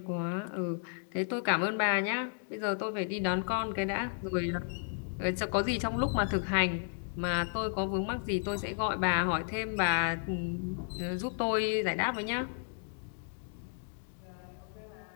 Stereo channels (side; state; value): right; silent; digital silence